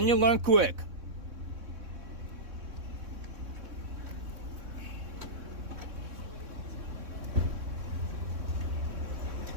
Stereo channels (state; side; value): late; left; 3.6 ms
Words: you learn quick.